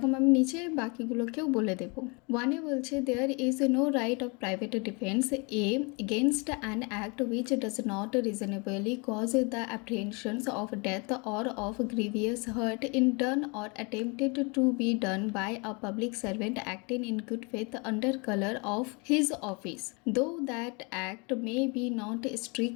আমি নিচে বাকিগুলোকেও বলে দেব। ওয়ানে বলছে there is no right of private defence against an act which does not reasonably cause the apprehensions of death or of grievous hurt in done or attempted to be done by a public servant acting in good faith under color of his office, though that act may be not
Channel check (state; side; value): quieter; right; 30.9 dB